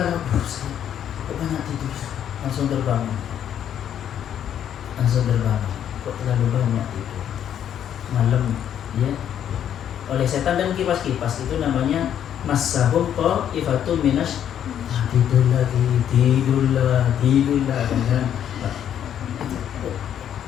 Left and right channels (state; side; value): quieter; right; 9.8 dB